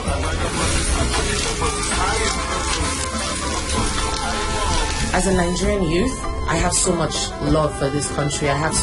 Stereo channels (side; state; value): both; identical; correlation 1.00